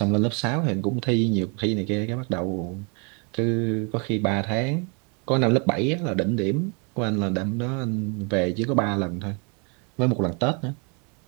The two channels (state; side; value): quieter; left; 35.3 dB